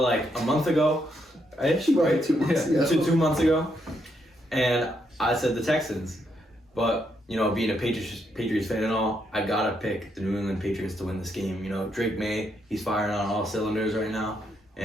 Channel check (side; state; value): both; normal; correlation 0.77